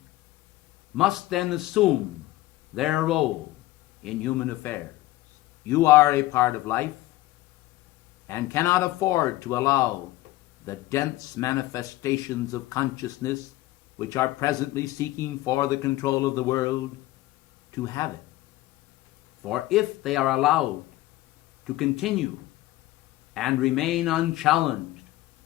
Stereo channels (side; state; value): right; quieter; 17.2 dB